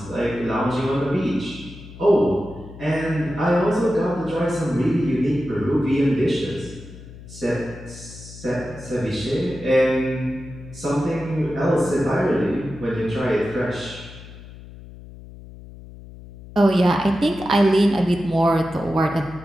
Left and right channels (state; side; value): noise; left; hum, 16 dB below the sound